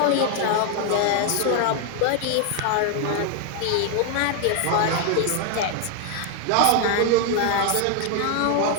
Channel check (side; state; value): both; different; correlation 0.00